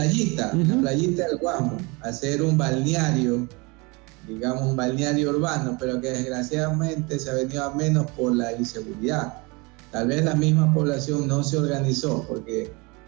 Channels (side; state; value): left; quieter; 27.4 dB